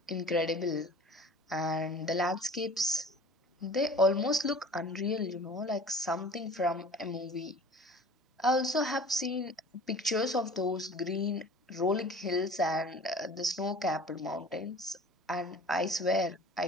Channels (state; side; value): normal; both; correlation 0.43